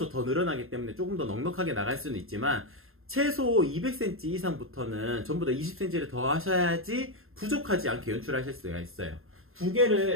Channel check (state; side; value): late; left; 0.61 ms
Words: 더 늘어나기 때문에 조금 더 넉넉하게 나갈 수는 있지만 최소 200cm 이상부터는 전부 다 20cm를 더 하셔야지 부족하지 않게 연출하실 수가 있어요. 두